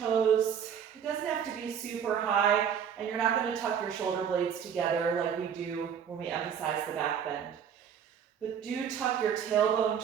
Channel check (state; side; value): quieter; left; 8.0 dB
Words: It doesn't have to be super high, and you're not going to tuck your shoulder blades together like we do when we emphasize the back bend. But do tuck your tailbone